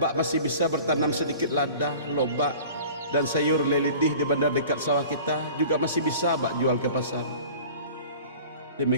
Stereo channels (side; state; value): both; inverted; correlation -0.44